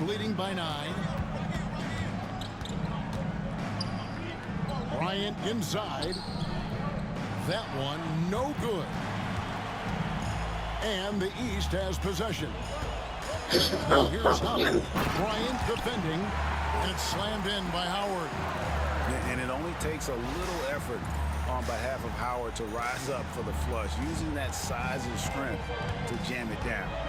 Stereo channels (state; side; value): identical; both; correlation 1.00